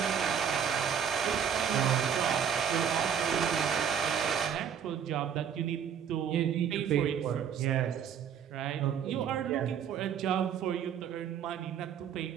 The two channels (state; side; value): quieter; left; 8.1 dB